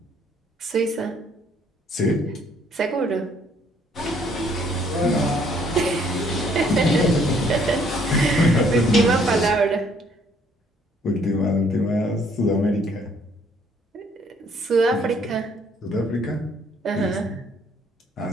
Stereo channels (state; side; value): normal; both; correlation 0.64